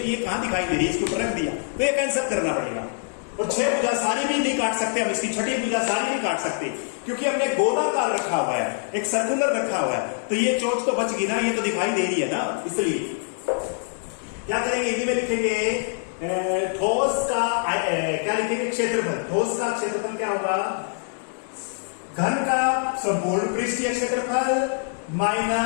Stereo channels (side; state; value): right; silent; 58 dB below the other